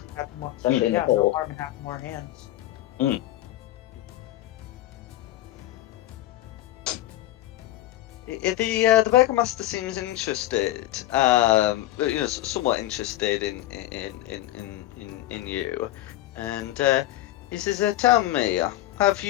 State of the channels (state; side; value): quieter; right; 15.0 dB